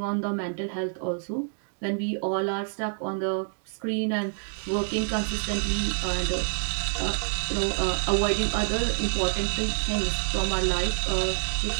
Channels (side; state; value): left; silent; digital silence